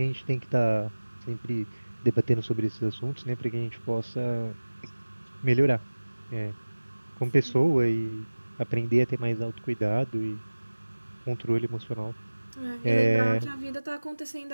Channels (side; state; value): both; inverted; correlation -1.00